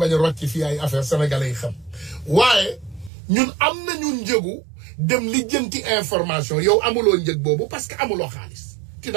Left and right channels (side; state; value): left; drops out; at 3.1 s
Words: a rocc fii ay affaire sénégalais yi xam waaye ñun am nañu njëgu dem lijjanti information yow amuloo njëg boobu parce que amuloo xaalis tu